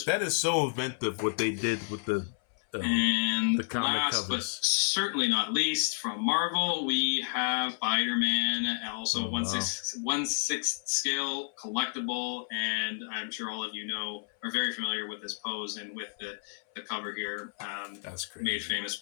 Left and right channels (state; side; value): silent; right; 57 dB below the other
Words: That is so inventive what they did with the comic last, covers. But certainly not least, from Marvel, we have Spider-Man, also 1/6 scale collectible, and I'm sure all of you are very familiar with this pose and with the cover here. That's great. Made famous